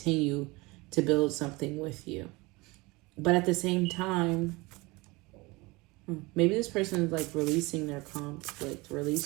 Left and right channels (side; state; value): left; quieter; 23.9 dB